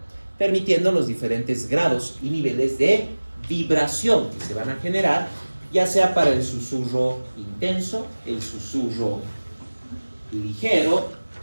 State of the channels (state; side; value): inverted; both; correlation -1.00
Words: permitiendo los diferentes grados y niveles de vibración que se van a generar, ya sea para el susurro intenso, el susurro ligero